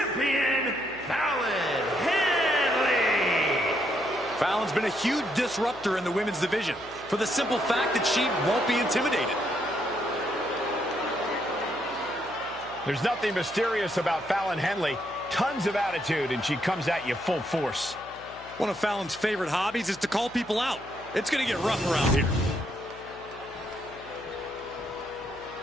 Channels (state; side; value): noise; left; hum, 21 dB below the sound